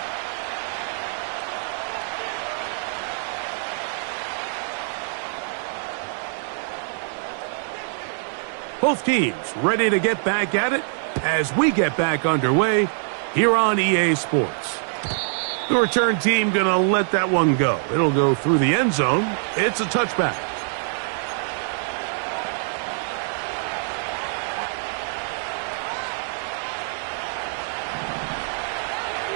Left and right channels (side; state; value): left; silent; digital silence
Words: Both teams ready to get back at it as we get back underway here on EA Sports. The return team going to let that one go. It'll go through the end zone. It's a touchback.